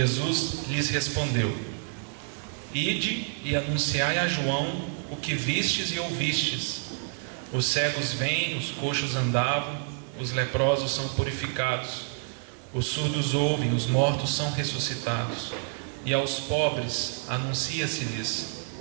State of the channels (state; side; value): silent; left; 59 dB below the other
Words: lhes respondeu: Ide e anunciai a João o que vistes e ouvistes: os cegos vêm, os coxos andavam, os leprosos são purificados, os surdos ouvem, os mortos são ressuscitados, e aos pobres anuncia-se-lhes